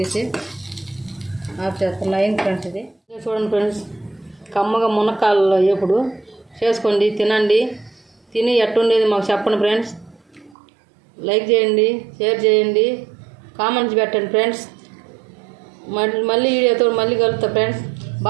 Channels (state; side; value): drops out; left; at 10.6 s